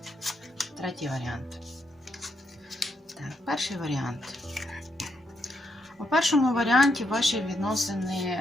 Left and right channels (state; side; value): normal; both; correlation 0.79